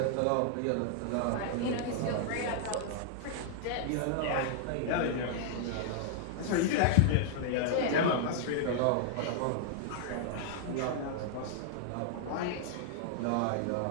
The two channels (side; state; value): both; different; correlation -0.01